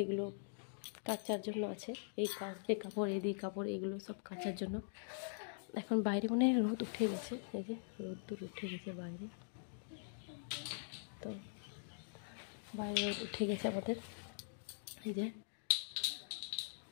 এগুলো কাচার জন্য আছে, এই কাপড় এগুলো সব কাচার জন্য। এখন বাইরে মনে হয় রোদ উঠে গেছে, এই যে রোদ উঠে গেছে বাইরে। তো বাইরে রোদ উঠে গেছে আমাদের। এই যে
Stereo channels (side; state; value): right; silent; digital silence